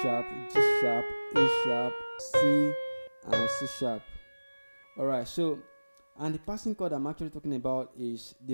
sharp, G sharp, A sharp, C, and C sharp. Alright, so and the passing chord I'm actually talking about is the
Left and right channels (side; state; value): both; inverted; correlation -1.00